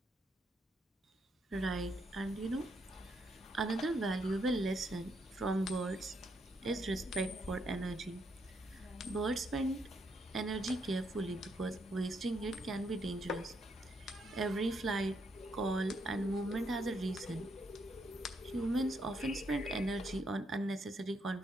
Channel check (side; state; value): both; normal; correlation 0.76